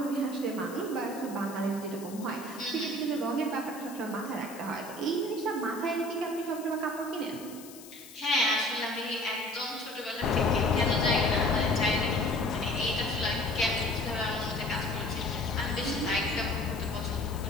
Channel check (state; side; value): noise; left; hiss, 17 dB below the sound